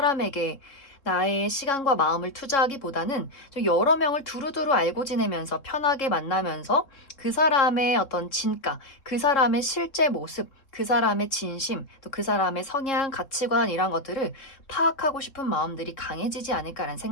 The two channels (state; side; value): late; right; 3.7 ms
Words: 나의 시간과 마음을 투자하기보다는 좀 여러 명을 두루두루 알고 지내면서 편하게 만나면서 그 사람의 어떤 진가, 그 사람의 실제 모습, 그 사람의 진심, 또 그 사람의 성향, 가치관 이런 것들을 파악하고 싶은 마음들이 강해지지 않을까라는